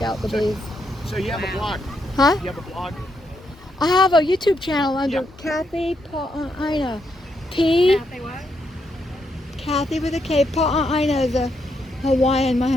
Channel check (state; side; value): normal; both; correlation 0.79